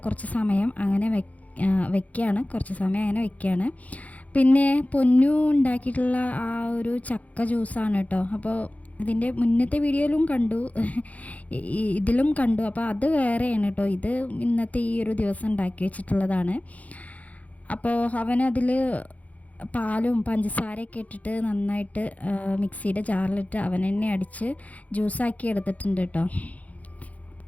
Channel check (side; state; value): right; late; 0.071 ms